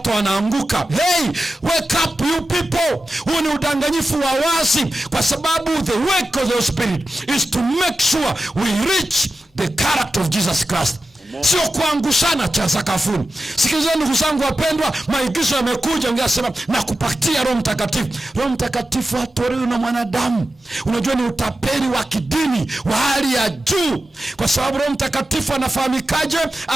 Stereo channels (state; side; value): normal; both; correlation 0.92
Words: wanaanguka. Hey, wake up you people. Huu ni udanganyifu wa wazi, kwa sababu the work of the Spirit is to make sure we reach the character of Jesus Christ. Sio kuangushana cha sakafuni. Sikilizeni ndugu zangu wapendwa, maigizo yamekuja, ungesema na kupatia Roho Mtakatifu. Roho Mtakatifu hatolewi na mwanadamu. Unajua ni utapeli wa kidini wa hali ya juu, kwa sababu Roho Mtakatifu anafahamikaje?